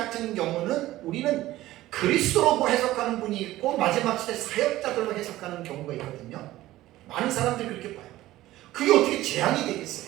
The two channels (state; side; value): quieter; left; 16.0 dB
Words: 경우는 우리는 그리스도로 해석하는 분이 있고 마지막 시대 사역자들로 해석하는 경우가 있거든요. 많은 사람들이 그렇게 봐요. 그게 어떻게 재앙이